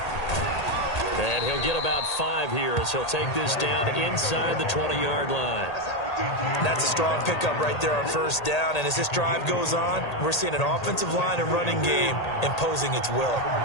And he'll get about 5 here as he'll take this down inside the 20-yard line. That's a strong pickup right there on first down. And as this drive goes on, we're seeing an offensive line and running game imposing its will.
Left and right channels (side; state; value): right; late; 1.8 ms